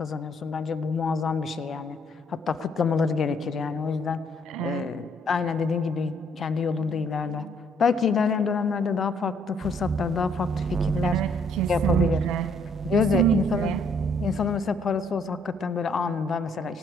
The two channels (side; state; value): both; normal; correlation 0.66